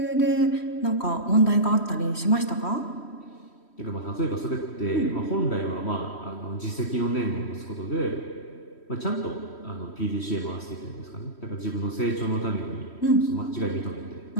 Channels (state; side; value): late; right; 3.1 ms